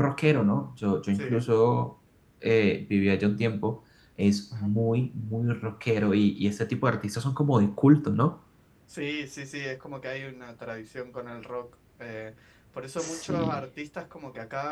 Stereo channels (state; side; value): identical; both; correlation 1.00